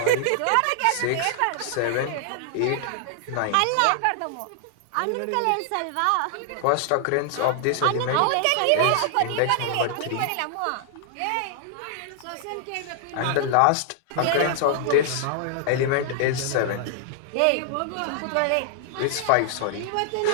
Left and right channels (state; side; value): different; both; correlation -0.01